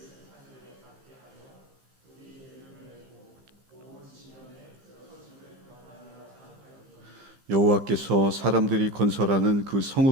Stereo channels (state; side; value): late; left; 15 ms